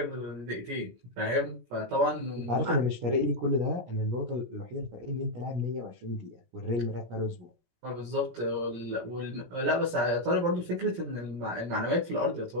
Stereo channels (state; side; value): late; left; 17 ms